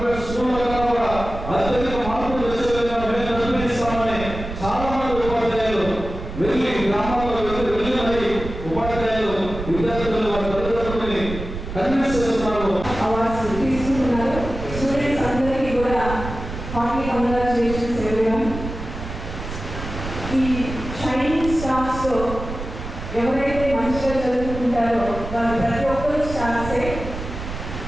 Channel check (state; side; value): noise; right; rumble, 8 dB below the sound